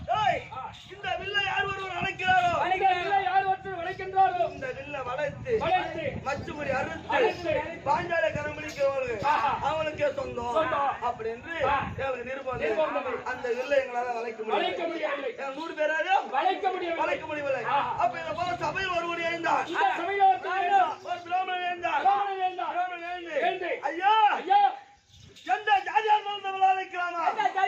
இந்த வில்லை யார் ஒருவர் அழைக்கிறாரோ யார் ஒருத்தர் வளைக்கின்றாரோ இந்த வில்லை வளைத்து மச்சுமுறி அறுத்து பாஞ்சால கரமளிக்கிறவர்கள் அவனுக்கே சொந்தம் அப்படி என்று நிருபம். அந்த வில்லை எங்களால வளைக்க முடியவில்லை. 100 பேராக வளைக்க முடியவில்லை. அப்ப இதை போல சபையில் ஒருவர் எழுந்தார். ஒரு பிராமணன் எழுந்தார். ஐயா எந்த ஜாதியா இருந்தாலும் விளைவிக்கலாமா? எந்த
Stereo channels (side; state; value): both; identical; correlation 1.00